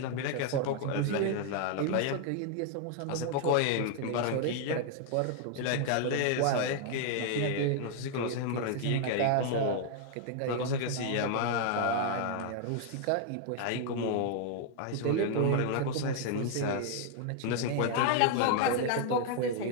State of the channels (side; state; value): both; different; correlation 0.00